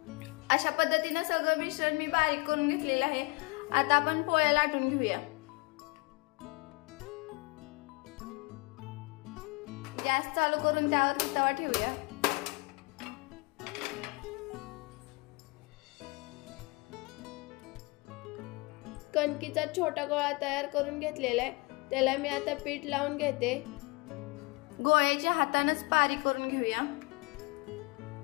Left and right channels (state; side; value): quieter; right; 27.2 dB